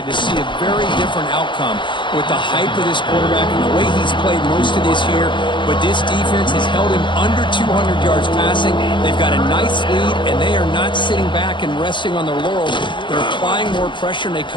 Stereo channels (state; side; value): late; right; 0.23 ms